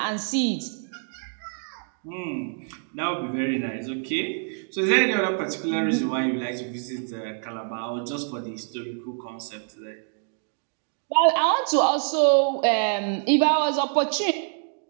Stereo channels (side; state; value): left; silent; 56 dB below the other